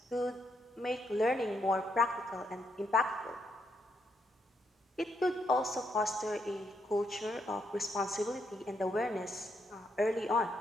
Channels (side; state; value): both; normal; correlation 0.77